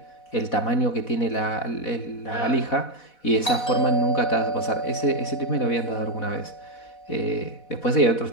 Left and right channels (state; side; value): late; right; 4.1 ms